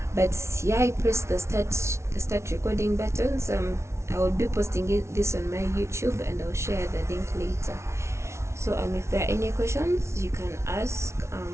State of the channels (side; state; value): left; late; 0.13 ms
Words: But yeah, I pressed the start recording button. So I will be posting this on my YouTube, and I'll share the link later. So if there are any questions, you can ask,